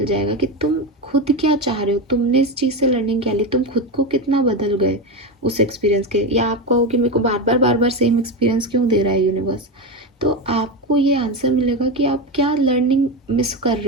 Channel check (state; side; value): normal; both; correlation 0.16